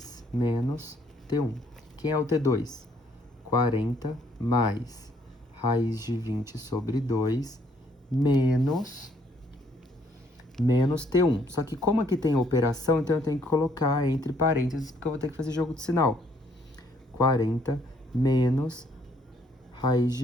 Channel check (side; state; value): both; normal; correlation 0.66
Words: menos T1. Quem é o T2? 40 mais raiz de 20 sobre 2 menos T1. Só que como aqui tem operação, então eu tenho que colocar entre parênteses, porque eu vou ter que fazer jogo de sinal. 40 menos raiz